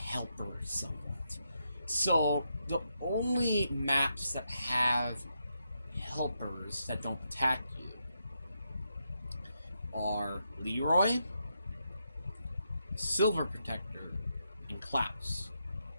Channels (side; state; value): both; inverted; correlation -0.82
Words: somewhat. So the only maps that have helpers that don't attack you are Leroy, Silver Protector, and Klaus.